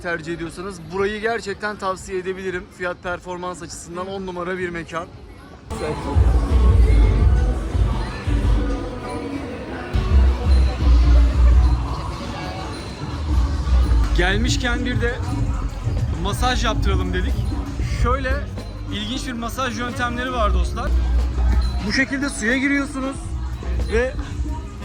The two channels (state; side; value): identical; both; correlation 1.00